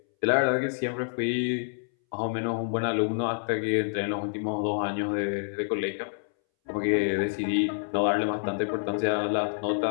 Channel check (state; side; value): silent; right; 60 dB below the other